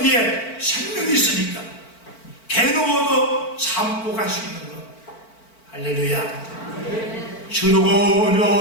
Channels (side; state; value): right; late; 4.5 ms